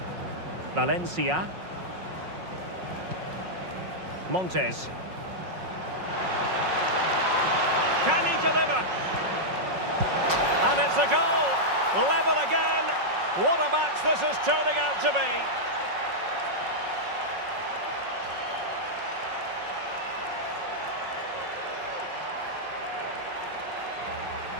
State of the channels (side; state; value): left; late; 5.5 ms